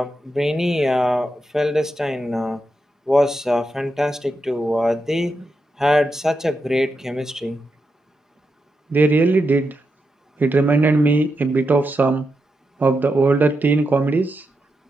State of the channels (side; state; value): both; normal; correlation 0.86